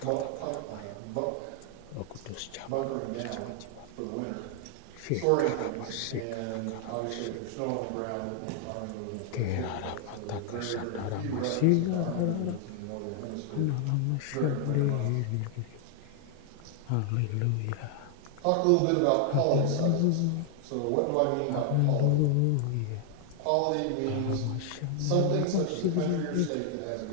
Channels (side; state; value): both; different; correlation 0.00